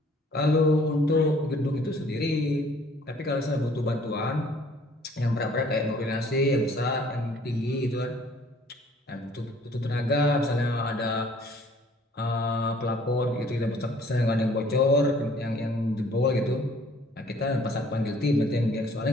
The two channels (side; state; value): both; normal; correlation 0.57